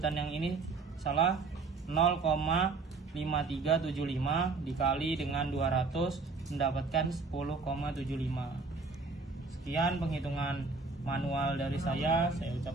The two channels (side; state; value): left; quieter; 4.1 dB